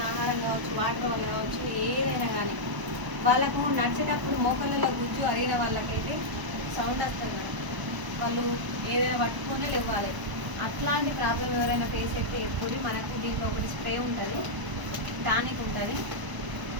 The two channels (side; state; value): left; late; 1.0 ms